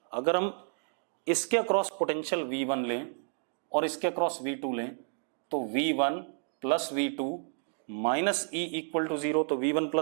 अगर हम इसके अक्रॉस पोटेंशियल V1 लें और इसके अक्रॉस V2 लें, तो V1 plus V2 minus E equal to 0। तो V1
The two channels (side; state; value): left; silent; 57 dB below the other